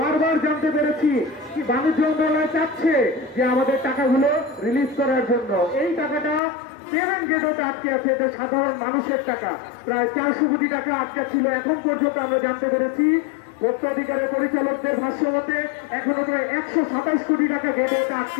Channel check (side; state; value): right; drops out; at 6.4 s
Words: জানতে পেরেছি কি বাণিজ্য মন্ত্রণালয় চাচ্ছে যে আমাদের টাকাগুলো রিলিজ করার জন্য। এই টাকাটা পেমেন্ট গেটওয়েতে আটকে আছে, এটা সাধারণ মানুষের টাকা। প্রায় 400 কোটি টাকা আটকে ছিল। এখন পর্যন্ত আমরা জানতে পেরেছি ভোক্তা অধিকারের পরিচালকদের ভাষ্য মতে এখনো প্রায় 127 কোটি টাকা গেটওয়েতে